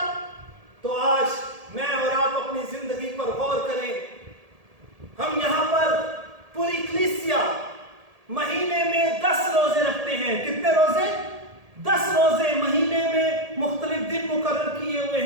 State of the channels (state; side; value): late; left; 1.7 ms